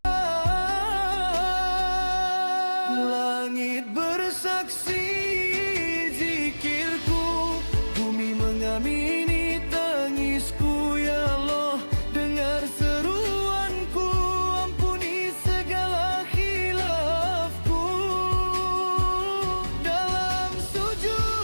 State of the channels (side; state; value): both; inverted; correlation -1.00